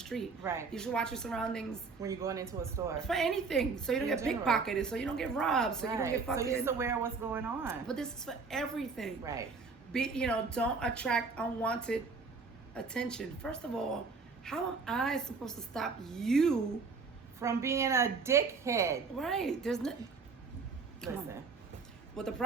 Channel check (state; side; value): quieter; left; 4.6 dB